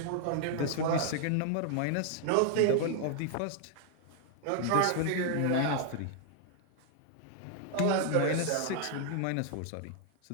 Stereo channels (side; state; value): both; different; correlation 0.00